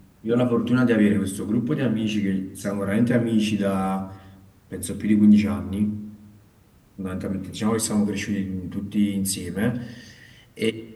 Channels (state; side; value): identical; both; correlation 1.00